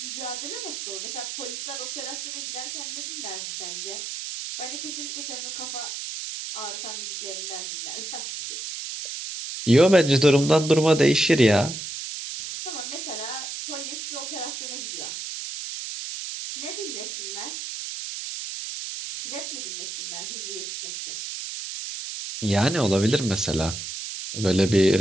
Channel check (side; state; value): right; noise; hiss, 7 dB below the sound